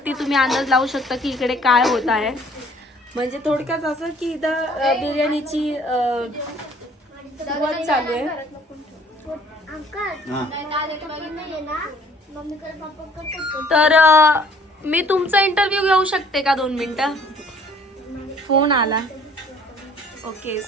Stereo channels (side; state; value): both; normal; correlation 0.57